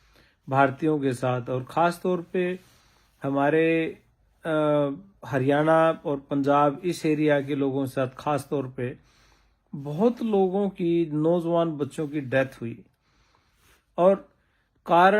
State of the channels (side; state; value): both; identical; correlation 1.00